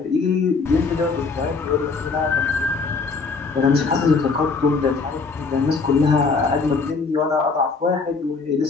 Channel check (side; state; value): right; quieter; 4.4 dB